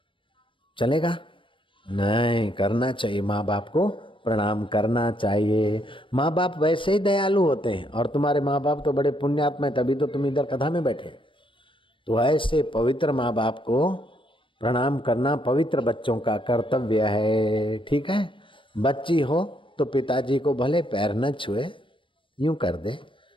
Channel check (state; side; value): late; right; 0.25 ms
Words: चलेगा? नहीं, करना चाहिए, माँ बाप को प्रणाम करना चाहिए। माँ बाप वैसे ही दयालु होते हैं और तुम्हारे माँ बाप तो बड़े पुण्यात्मा है, तभी तो तुम इधर कथा में बैठे। तो ऐसे पवित्र माँ बाप को प्रणाम करना पवित्र बच्चों का कर्तव्य है, ठीक है। बच्ची हो तो पिताजी को भले पैर न छुए, यूं कर दे,